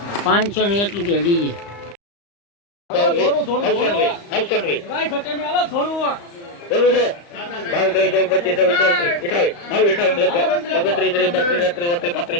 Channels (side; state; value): right; late; 35 ms